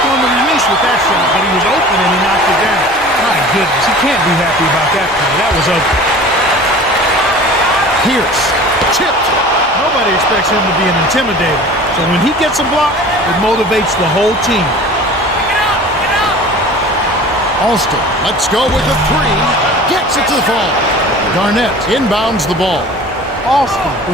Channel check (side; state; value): both; normal; correlation 0.42